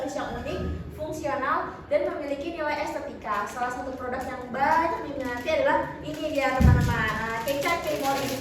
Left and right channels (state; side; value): identical; both; correlation 1.00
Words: yang unik, fungsional, dan memiliki nilai estetika. Salah satu produk yang banyak diminati adalah ini dia teman-teman, Kecap Kemor, di